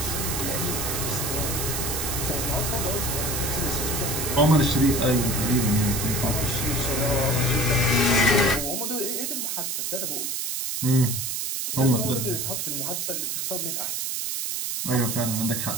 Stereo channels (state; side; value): noise; right; hiss, 2 dB below the sound